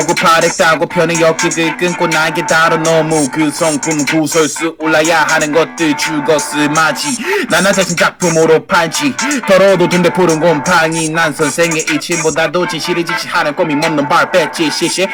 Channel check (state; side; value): identical; both; correlation 1.00